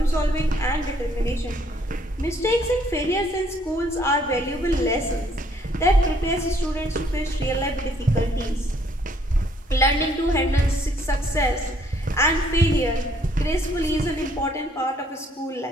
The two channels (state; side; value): normal; both; correlation 0.65